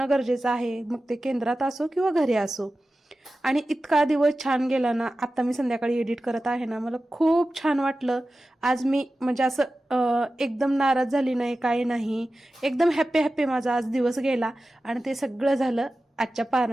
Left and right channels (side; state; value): both; normal; correlation 0.94